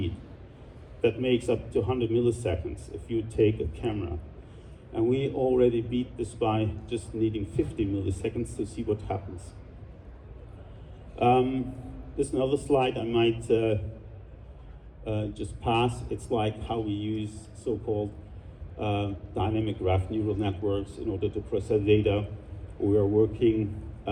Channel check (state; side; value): identical; both; correlation 1.00